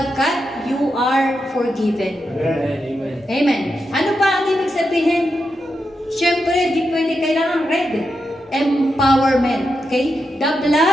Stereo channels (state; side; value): normal; both; correlation 0.87